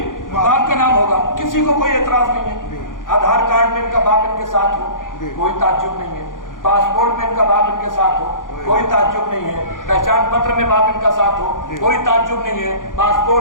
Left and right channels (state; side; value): late; right; 0.89 ms